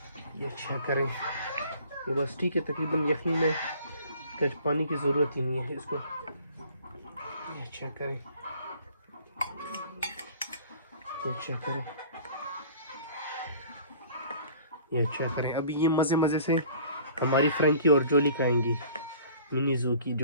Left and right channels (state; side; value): inverted; both; correlation -0.50